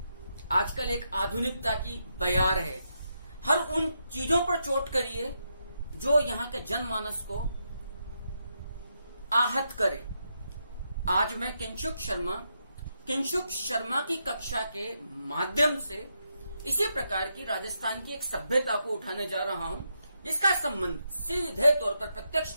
आजकल एक आधुनिकता की बयार है। हर उन चीजों पर चोट करिए जो यहाँ के जनमानस को आहत करे। आज मैं किंशुक शर्मा की कक्षा के माध्यम से इसी प्रकार की राजस्थान की एक सभ्यता को उठाने जा रहा हूं, जिसका संबंध सीधे तौर पर,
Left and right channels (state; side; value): inverted; both; correlation -0.82